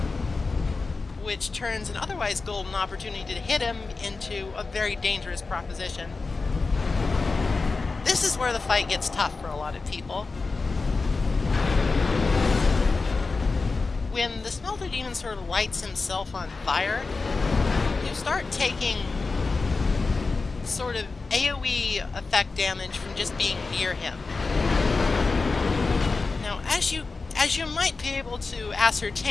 which turns an otherwise golden opportunity to hit him into a very dangerous proposition. This is where the fight gets tough for a lot of people. When the Smelter Demon sort of lights himself on fire, you start taking sort of AoE effect damage from just being near him. Now, as you might be able to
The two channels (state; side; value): quieter; right; 4.1 dB